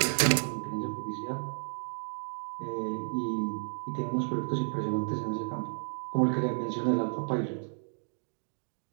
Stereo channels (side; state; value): left; silent; 56 dB below the other